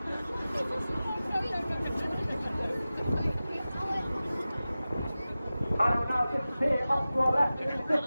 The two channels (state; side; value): inverted; both; correlation -0.96